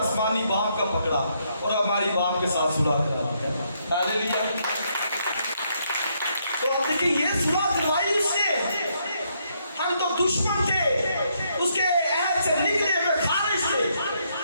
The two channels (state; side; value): inverted; both; correlation -0.75